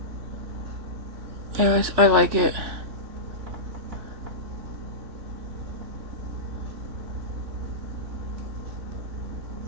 I like it.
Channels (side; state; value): left; late; 3.4 ms